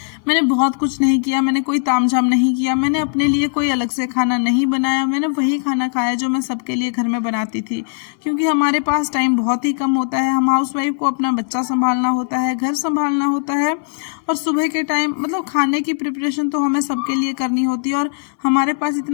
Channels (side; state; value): right; silent; 61 dB below the other